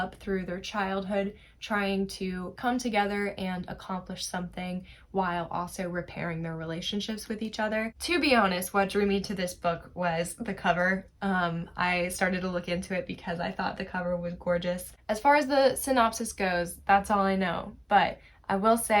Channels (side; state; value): both; identical; correlation 1.00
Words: through their childhood, trying to come together and accomplish something while also repairing their relationships with each other. To be honest, what drew me to this book was the cover. I started to look into it because I thought the cover was gorgeous. As far as the synopsis goes, that's all I know, but I will